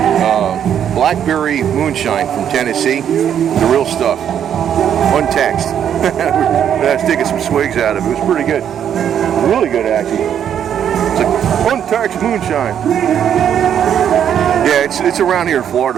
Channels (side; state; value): left; quieter; 9.2 dB